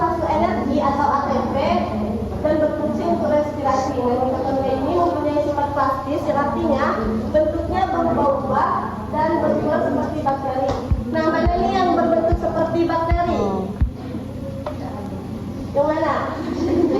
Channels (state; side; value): identical; both; correlation 1.00